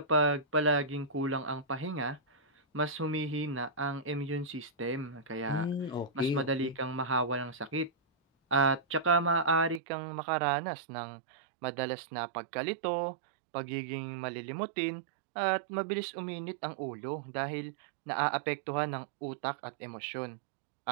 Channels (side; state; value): left; drops out; at 9.8 s